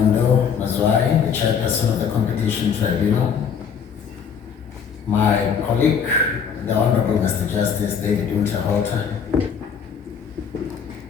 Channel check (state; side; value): quieter; right; 7.1 dB